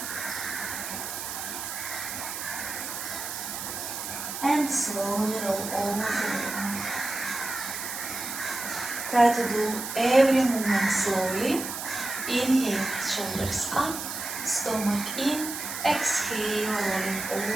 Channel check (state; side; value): noise; right; hiss, 6 dB below the sound